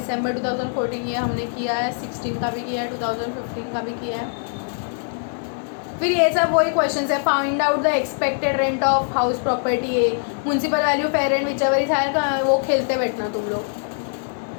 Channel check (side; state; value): right; silent; digital silence